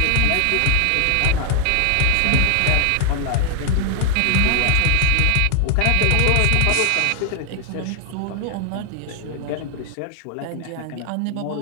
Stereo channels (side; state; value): both; different; correlation 0.00